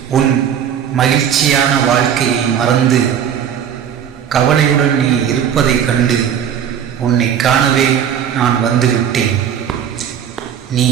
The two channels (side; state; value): left; quieter; 8.8 dB